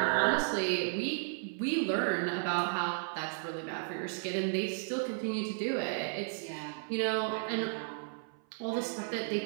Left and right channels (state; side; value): silent; left; 55 dB below the other